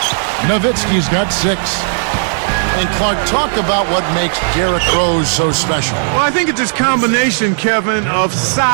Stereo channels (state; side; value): silent; left; digital silence